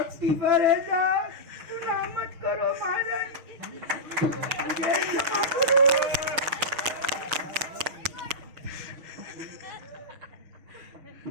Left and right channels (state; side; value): late; left; 6.7 ms